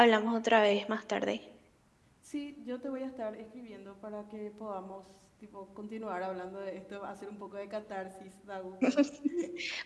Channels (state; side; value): identical; both; correlation 1.00